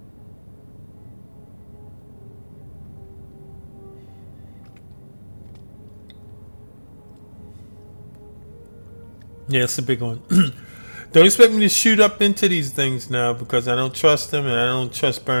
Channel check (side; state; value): both; inverted; correlation -1.00